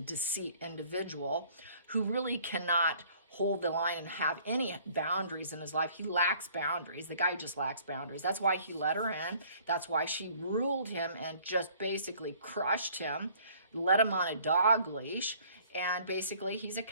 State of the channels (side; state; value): both; inverted; correlation -0.57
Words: deceit individual who really cannot hold the line and have any boundaries in his life. He lacks boundaries. The guy just lacks boundaries. That's why he let her in. That's why she ruled him and just basically crushed him, let him on a dog leash. And basically he's a